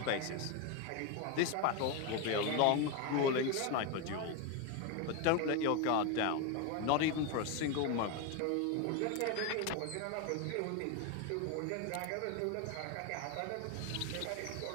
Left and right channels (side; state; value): both; different; correlation 0.02